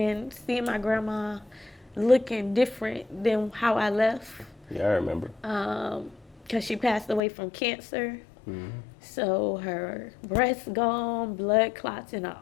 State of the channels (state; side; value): drops out; right; at 7.2 s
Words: seeing my grandma looking different than how I left. Yeah, I remember. Because she passed away from cancer. So her breast gone, blood clots in her